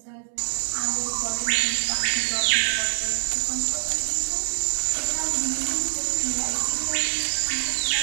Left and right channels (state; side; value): silent; left; 62 dB below the other